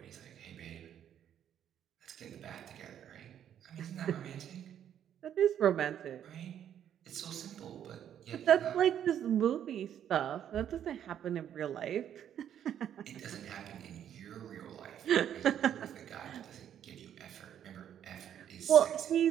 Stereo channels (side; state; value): left; quieter; 9.8 dB